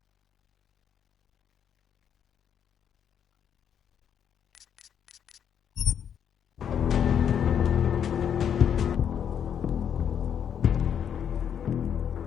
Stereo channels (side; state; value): right; quieter; 8.5 dB